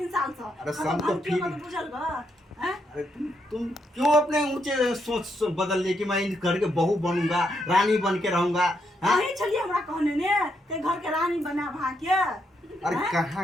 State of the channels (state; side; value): normal; both; correlation 0.78